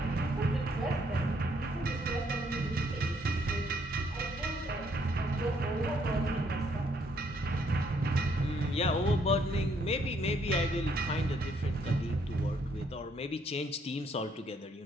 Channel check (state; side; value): normal; both; correlation 0.69